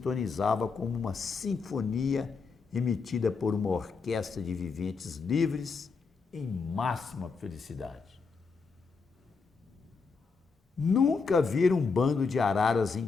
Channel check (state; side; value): quieter; right; 4.9 dB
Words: como uma sinfonia emitida por uma orquestra de viventes livres em máxima felicidade. Nunca vi um bando de araras